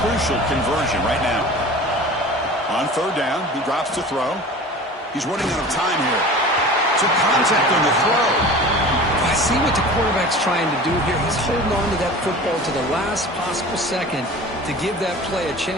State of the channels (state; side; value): normal; both; correlation 0.39